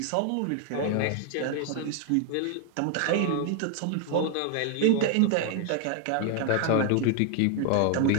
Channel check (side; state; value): both; different; correlation 0.00